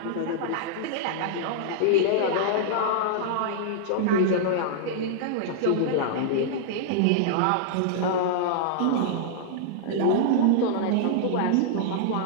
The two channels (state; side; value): different; both; correlation -0.01